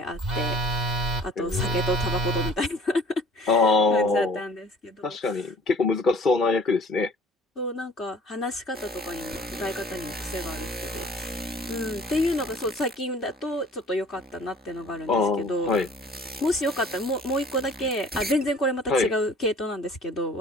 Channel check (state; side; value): normal; both; correlation 0.50